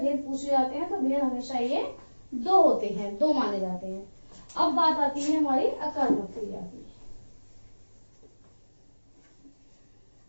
पूछे जाते हैं तो भेद हमेशा ये दो होते हैं, दो माने जाते हैं। अब बात आती है हमारी अकर्मक क्रिया की।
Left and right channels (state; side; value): inverted; both; correlation -1.00